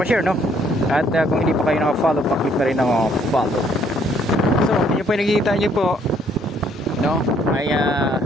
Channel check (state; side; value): normal; both; correlation 0.66